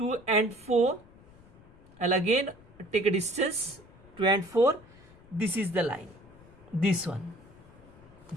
and 4. I'll again take a distance 2 and 4. This is the line, this one,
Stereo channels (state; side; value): noise; left; rumble, 24 dB below the sound